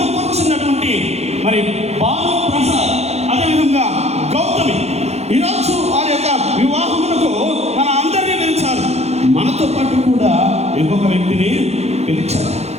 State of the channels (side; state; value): left; late; 0.31 ms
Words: కూర్చున్నటువంటి మరి భాను ప్రసాద్, అదేవిధంగా గౌతమి, ఈరోజు వారి యొక్క వివాహమునకు మన అందరినీ పిలిచారు. మనతో పాటు కూడా ఇంకొక వ్యక్తిని పిలిచారు.